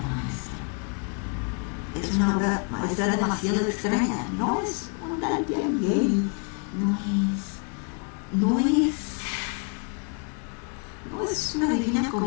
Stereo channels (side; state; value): right; quieter; 38.3 dB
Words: maestra. Es una obra maestra demasiado extraña. No es un Dante Alighieri, no es una divina